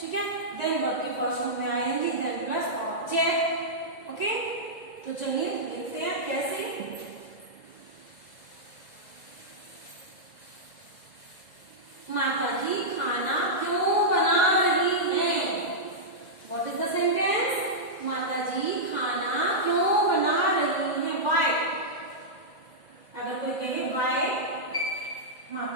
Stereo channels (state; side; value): late; right; 1.9 ms